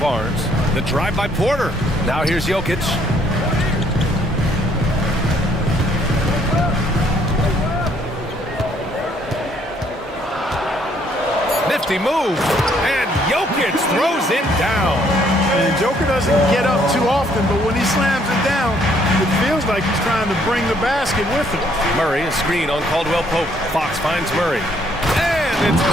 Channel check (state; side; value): normal; both; correlation 0.66